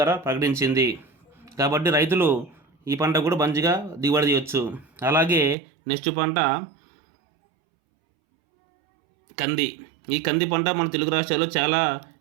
ప్రకటించింది. కాబట్టి రైతులు ఈ పంట కూడా మంచిగా దిగుబడి చేయొచ్చు. అలాగే నెక్స్ట్ పంట కంది. ఈ కంది పంట మన తెలుగు రాష్ట్రాల్లో చాలా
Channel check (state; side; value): drops out; left; at 5.6 s